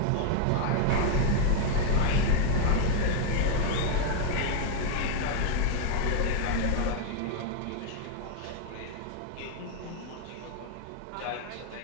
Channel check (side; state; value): both; different; correlation 0.01